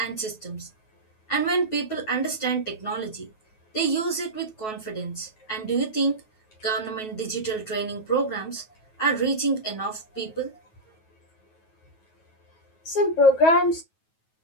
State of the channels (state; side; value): late; right; 9.3 ms